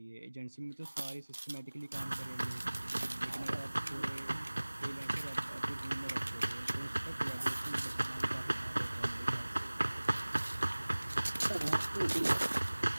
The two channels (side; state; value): both; inverted; correlation -1.00